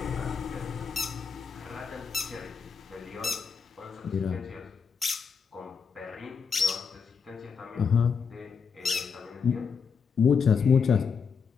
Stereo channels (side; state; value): right; quieter; 5.9 dB